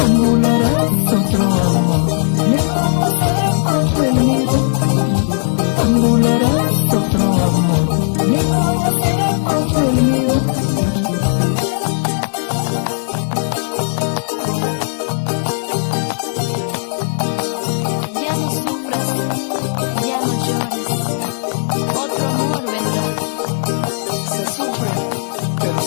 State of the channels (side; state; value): right; silent; digital silence